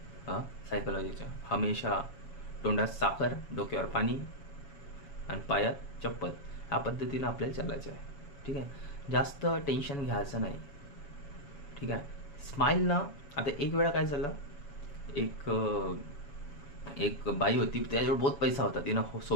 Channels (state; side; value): late; right; 7.0 ms